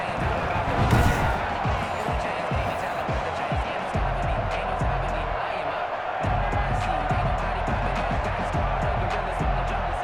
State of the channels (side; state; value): both; identical; correlation 1.00